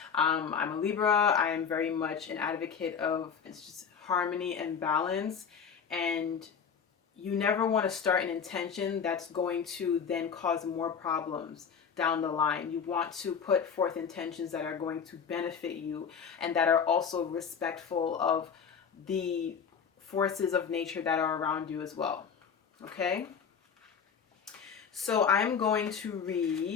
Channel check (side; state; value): right; quieter; 6.7 dB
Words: I'm a Libra. I am very much an advocate of just harmony and balance, and you never want to start an intention that's going to then cause more problems down the line. You want to put forth intentions that are going to benefit you and that are also respectful of the forces of nature that are around you as well. Okay? So I'm going to